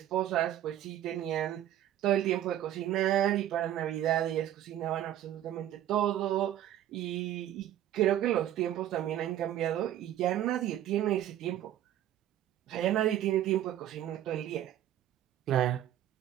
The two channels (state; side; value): quieter; left; 12.1 dB